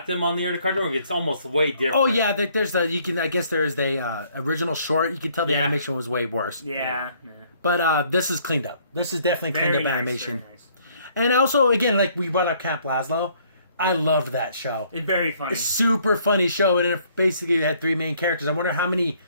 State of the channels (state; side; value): inverted; both; correlation -0.63